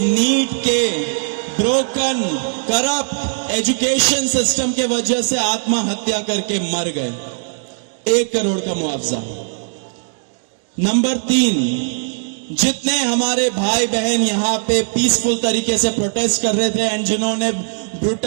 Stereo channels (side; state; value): left; silent; 63 dB below the other